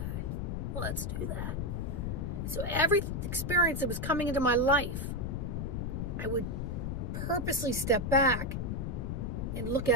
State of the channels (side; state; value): left; noise; rumble, 2 dB below the sound